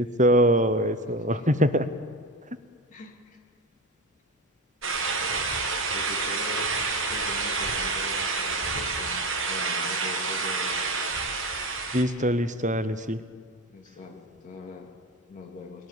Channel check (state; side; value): normal; both; correlation 0.24